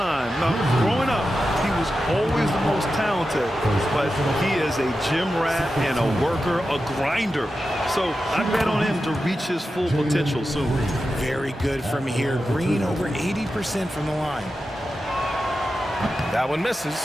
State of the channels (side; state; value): both; normal; correlation 0.91